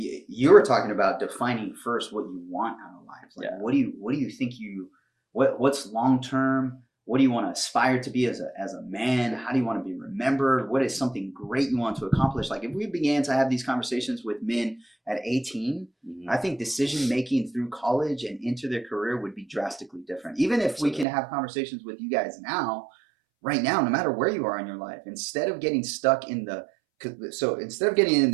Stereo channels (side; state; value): left; drops out; at 21.1 s